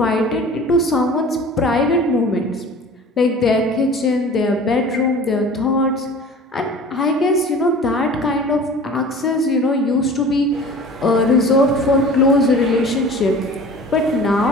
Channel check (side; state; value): both; normal; correlation 0.42